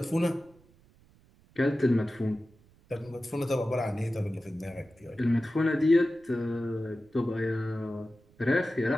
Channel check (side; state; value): right; noise; rumble, 29 dB below the sound